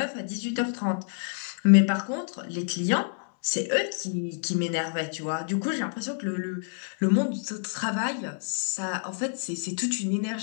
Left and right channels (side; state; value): right; silent; digital silence